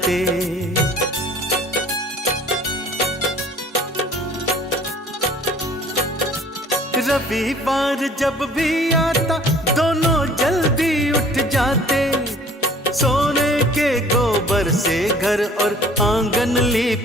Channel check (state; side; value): normal; both; correlation 0.52